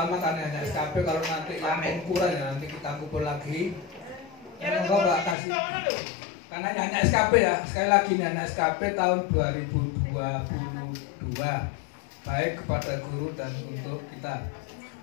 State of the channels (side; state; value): right; drops out; at 5.4 s